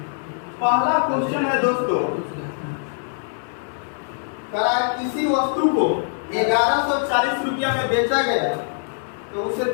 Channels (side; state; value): right; silent; digital silence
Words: पहला क्वेश्चन है दोस्तों, किसी वस्तु को 1140 रुपया में बेचा गया तो उसे